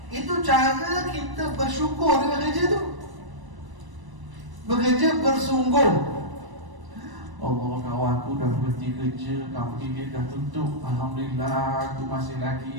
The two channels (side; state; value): left; late; 1.0 ms